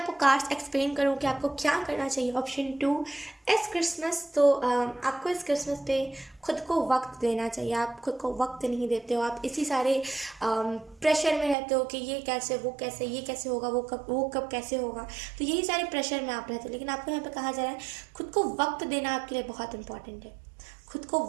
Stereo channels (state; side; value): drops out; left; at 11.6 s